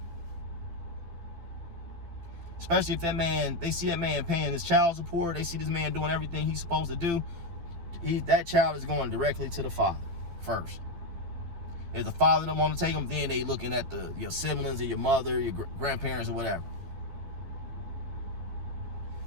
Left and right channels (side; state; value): left; late; 12 ms